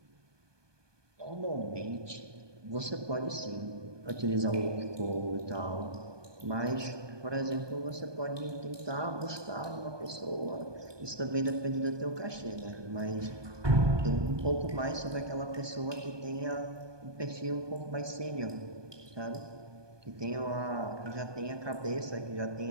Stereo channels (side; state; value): left; late; 1.2 ms